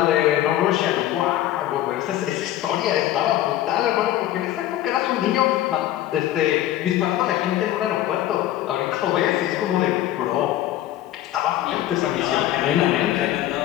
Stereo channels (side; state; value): right; quieter; 13.4 dB